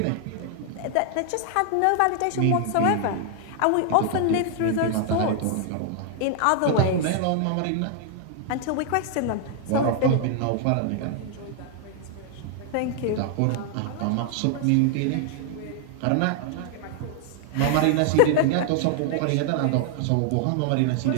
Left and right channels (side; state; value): both; different; correlation 0.00